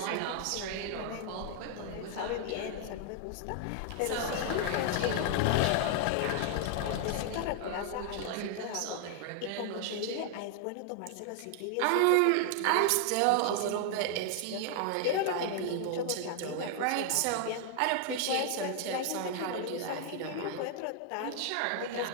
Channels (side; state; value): both; different; correlation 0.00